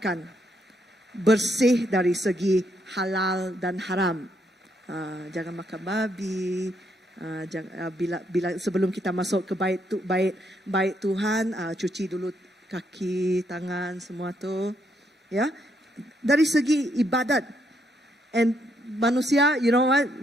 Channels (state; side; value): normal; both; correlation 0.75